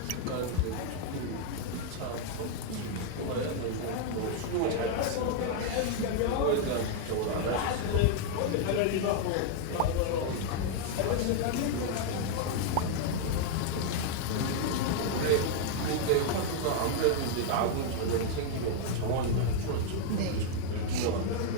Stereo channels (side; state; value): both; different; correlation 0.00